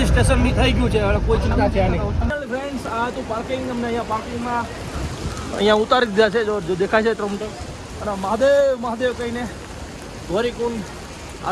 બી થઈ ગયું છે. હવે કોઈ ચિંતા છે નહીં. ફ્રેન્ડ્સ આ તો પાર્કિંગ અમને અહીંયા પાર્કિંગમાં અહીંયા ઉતારી દીધા છે. જો દેખાય છે ટ્રમ્પર. અને મહાદેવ કહીને ગોરીકુંડ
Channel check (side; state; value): both; identical; correlation 1.00